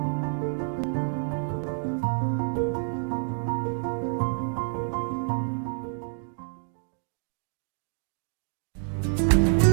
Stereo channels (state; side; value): silent; left; digital silence